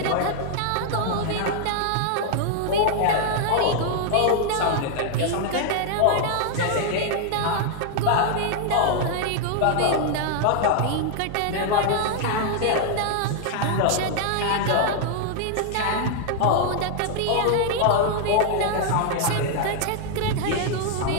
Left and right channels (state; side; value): different; both; correlation 0.00